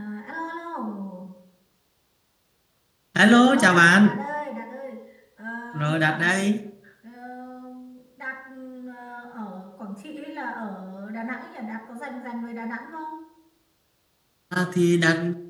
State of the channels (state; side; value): identical; both; correlation 1.00